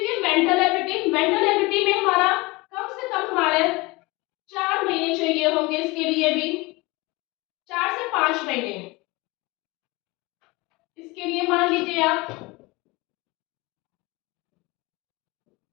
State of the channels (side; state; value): right; quieter; 23.7 dB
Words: ये मेंटल एबिलिटी में हमारा कम से कम हमारे 4 महीने चाहिए होंगे, इसके लिए भी 4 से 5 महीने, इसके लिए मान लीजिए आप।